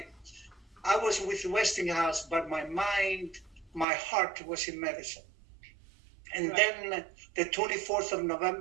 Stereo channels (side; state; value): left; drops out; at 3.9 s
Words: was with the Westinghouse, but my mind, my heart was in medicine. And then the 24th